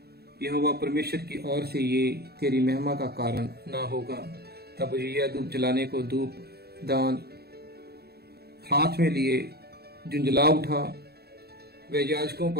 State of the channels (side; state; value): left; late; 0.46 ms